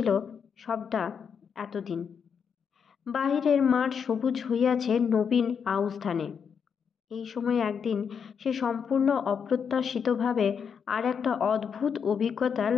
সবটা এতদিন। বাহিরের মাঠ সবুজ হইয়াছে নবীন আউশ ধানে। এই সময় একদিন সে সম্পূর্ণ অপ্রত্যাশিতভাবে আর একটা অদ্ভুত অভিজ্ঞতা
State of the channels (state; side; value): quieter; right; 6.8 dB